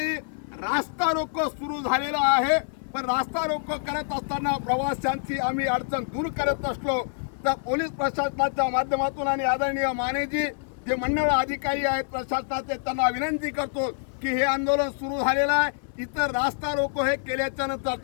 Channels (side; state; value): right; silent; 61 dB below the other